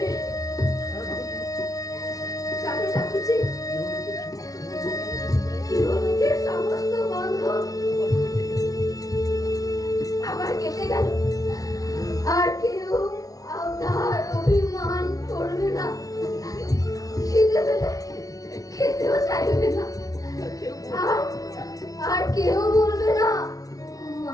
ঠাকুরজি। ইহলোকের সমস্ত বন্ধন আবার কেটে গেল, আর কেউ আপনার অভিমান করবে না, খিদে পেলে খেতেও চাইবে না, আর কেউ বলবে না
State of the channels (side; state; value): right; late; 0.18 ms